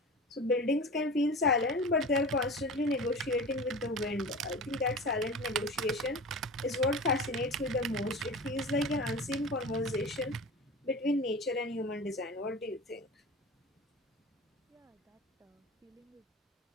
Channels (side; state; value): both; normal; correlation 0.33